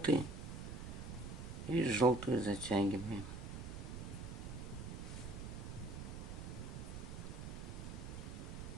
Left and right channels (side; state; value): right; noise; rumble, 7 dB below the sound